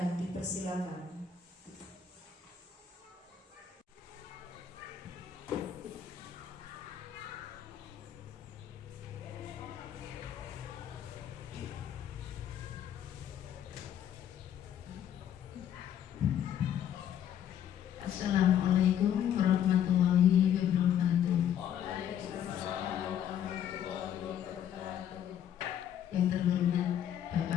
dipersilakan. Assalamualaikum warahmatullahi wabarakatuh. Yang terhormat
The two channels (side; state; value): right; quieter; 9.5 dB